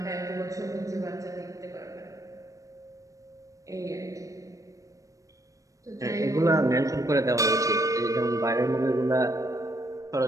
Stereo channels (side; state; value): left; late; 0.16 ms